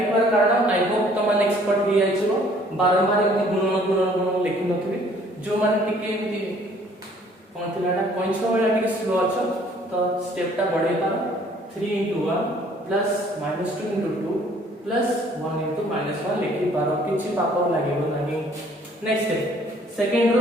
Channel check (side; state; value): both; normal; correlation 0.58